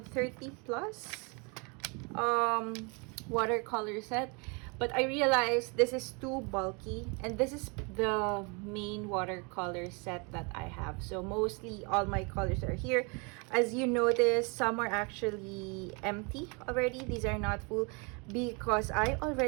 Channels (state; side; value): quieter; left; 32.3 dB